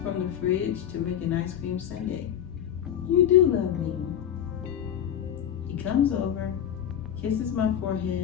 from the fridge to make an ice cream sundae. You do love me. He comes over, kisses my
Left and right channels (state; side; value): quieter; right; 9.8 dB